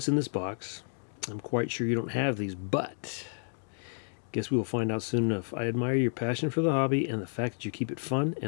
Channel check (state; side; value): silent; right; 57 dB below the other